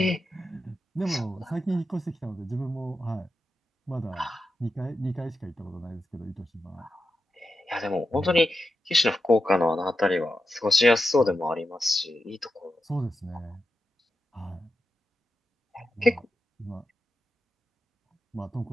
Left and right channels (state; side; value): normal; both; correlation 0.88